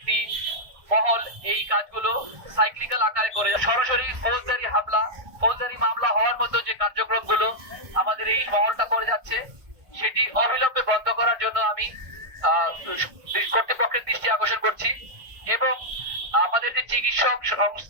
মহল এই কাজগুলো সাইক্লিক্যাল আকারে করে সরাসরি ফৌজদারি হামলা, ফৌজদারি মামলা হওয়ার মতো যে কার্যক্রমগুলো আমাদের এই মহলটা করে যাচ্ছে, সেটি অবিলম্বে বন্ধ করার জন্য আমি কর্তৃপক্ষের দৃষ্টি আকর্ষণ করছি। এবং আমাদের যে চিকিৎসক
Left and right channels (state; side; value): late; left; 1.5 ms